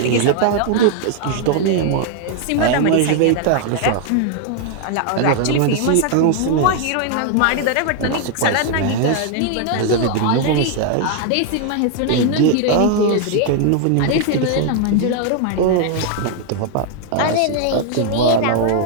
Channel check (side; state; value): both; different; correlation 0.00